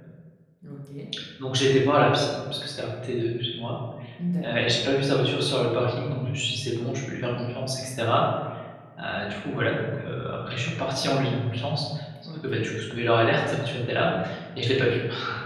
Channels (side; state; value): both; identical; correlation 1.00